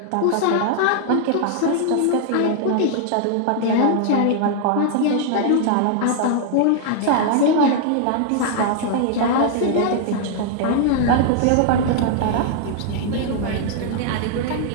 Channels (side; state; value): both; different; correlation 0.00